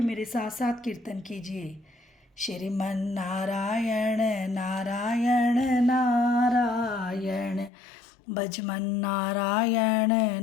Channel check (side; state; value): right; drops out; at 7.7 s